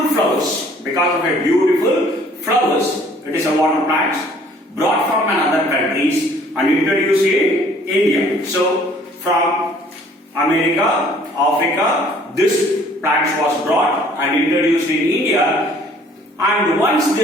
flowers. Because of a beautiful flowers, it is a water plant brought from another countries and introduced in India. So from America, Africa, this plant was brought and introduced in India. And once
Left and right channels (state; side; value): normal; both; correlation 0.57